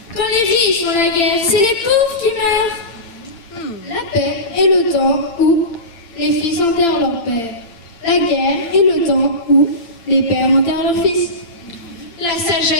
Quand les riches font la guerre, c'est les pauvres qui meurent. La paix est le temps où les fils enterrent leur père. La guerre est le temps où les pères enterrent leurs fils. La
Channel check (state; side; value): late; right; 8.8 ms